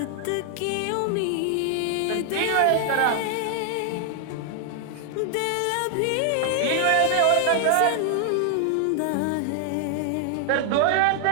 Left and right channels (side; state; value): both; different; correlation 0.00